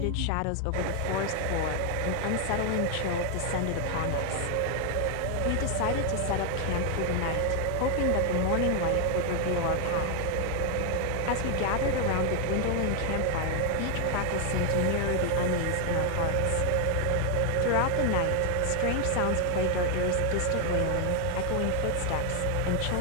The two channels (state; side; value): different; both; correlation 0.00